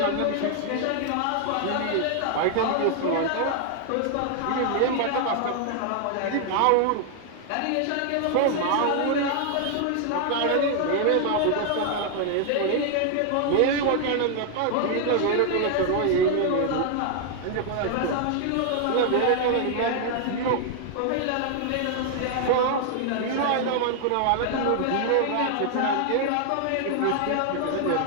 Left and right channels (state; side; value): different; both; correlation 0.00